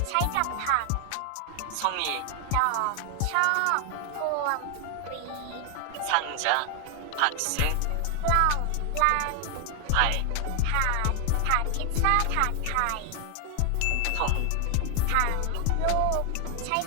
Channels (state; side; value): different; both; correlation 0.00